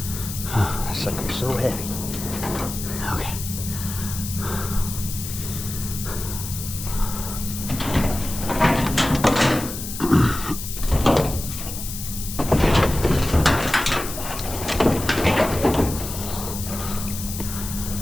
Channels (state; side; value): noise; left; hiss, 8 dB below the sound